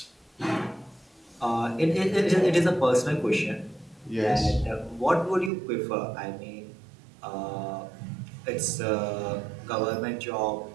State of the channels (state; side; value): drops out; left; at 5.5 s